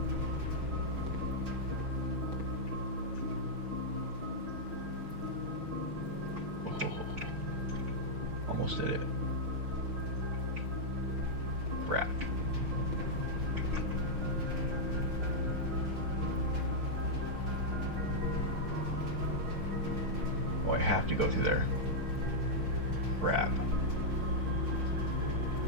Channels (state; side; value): late; left; 6.2 ms